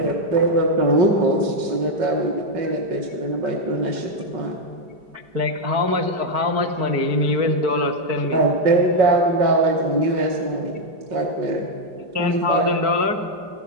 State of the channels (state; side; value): late; left; 4.5 ms